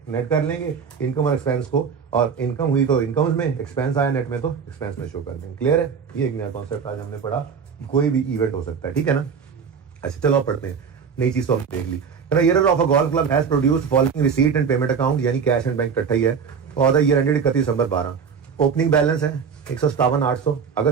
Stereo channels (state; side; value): quieter; left; 6.4 dB